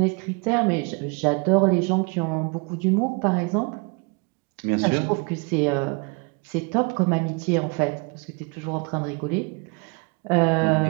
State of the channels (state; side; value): quieter; left; 31.8 dB